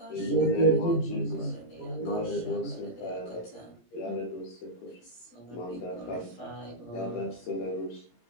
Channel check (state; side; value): late; right; 18 ms